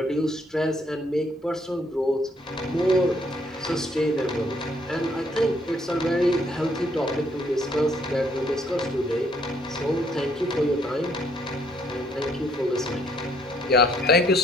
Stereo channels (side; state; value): both; normal; correlation 0.67